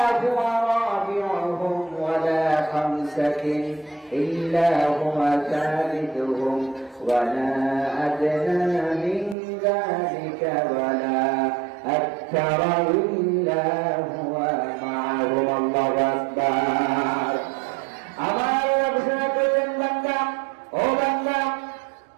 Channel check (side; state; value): left; drops out; at 9.3 s